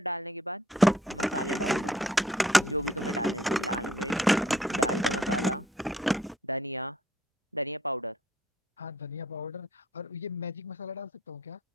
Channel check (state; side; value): normal; both; correlation 0.63